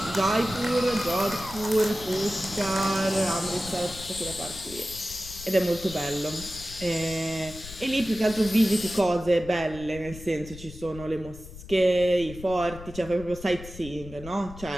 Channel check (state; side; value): noise; left; rumble, 15 dB below the sound